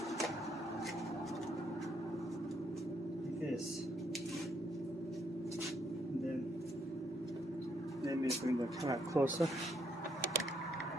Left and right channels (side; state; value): both; normal; correlation 0.73